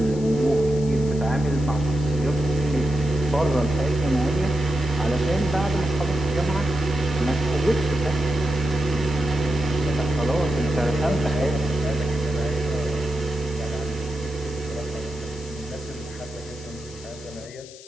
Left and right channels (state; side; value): noise; left; hiss, 19 dB below the sound